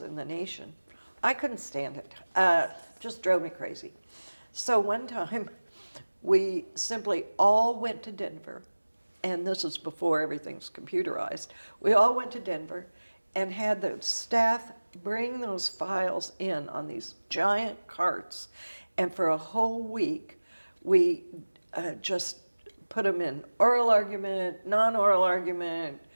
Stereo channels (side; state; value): both; inverted; correlation -1.00